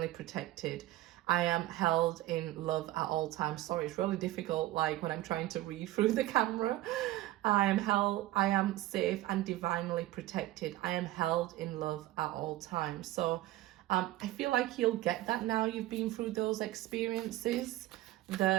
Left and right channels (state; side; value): quieter; left; 16.1 dB